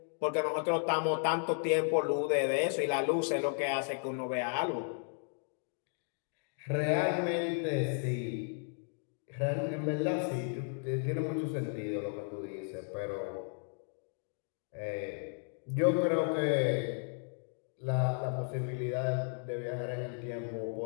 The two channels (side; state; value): right; silent; 55 dB below the other